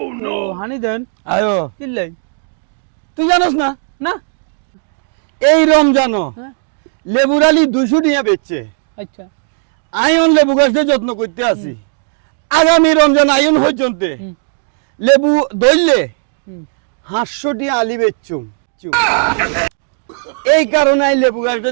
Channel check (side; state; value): left; silent; 62 dB below the other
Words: ও হানি দেন আয়ো কিল্লাই তুই জানোস না না এই রমজান হ্যাঁ লেবুর আলি 200 টাকা বেচছে আচ্ছা আয়ন লেবু গাছটা যত্ন করতে আছি আগামী রমজান আয়ন পর্যন্ত হুম। লেবু ধরলে হুম 500 টাকা আলি বেচছুম এই কারণে আই লেবু গাছটা